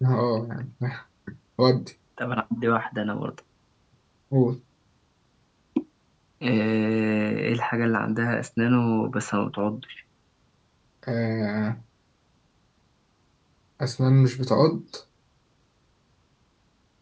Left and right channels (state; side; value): identical; both; correlation 1.00